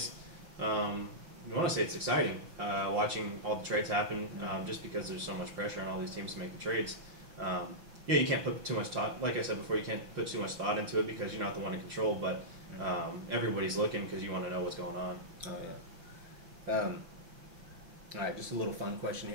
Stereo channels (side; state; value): left; late; 5.7 ms